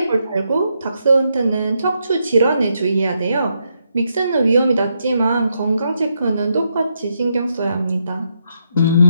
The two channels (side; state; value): both; inverted; correlation -0.80